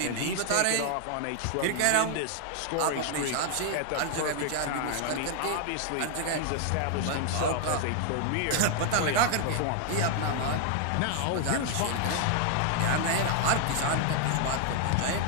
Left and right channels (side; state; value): both; different; correlation 0.00